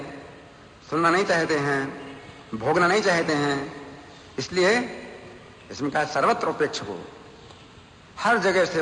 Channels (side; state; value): both; identical; correlation 1.00